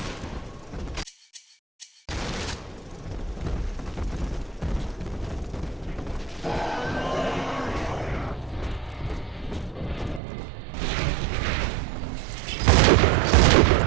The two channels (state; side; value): drops out; left; at 10.2 s